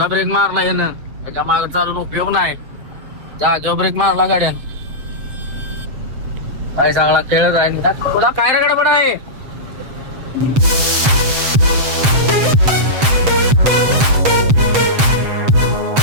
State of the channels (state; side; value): late; left; 7.7 ms